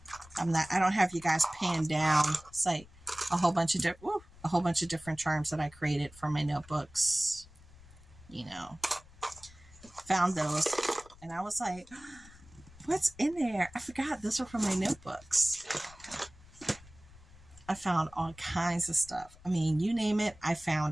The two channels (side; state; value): left; noise; rumble, 22 dB below the sound